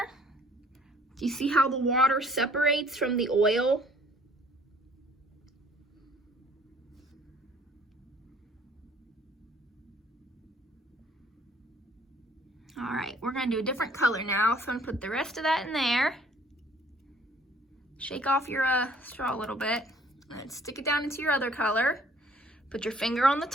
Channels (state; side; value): normal; both; correlation 0.58